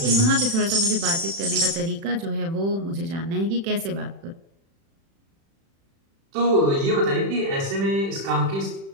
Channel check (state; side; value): late; left; 36 ms